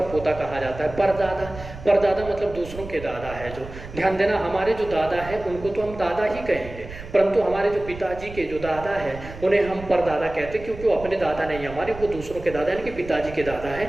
पोता कहा जाता है। परदादा मतलब दूसरों के दादा है। जो ध्यान देना, हमारे जो दादा है उनको तो हम दादा ही कहेंगे, परंतु हमारे जो पिताजी के जो दादा है उन्हें हम परदादा कहते हैं, क्योंकि वो अपने दादा नहीं हमारे, वो दूसरों के दादा यानी कि पिताजी के दादा है,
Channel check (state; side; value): noise; right; rumble, 13 dB below the sound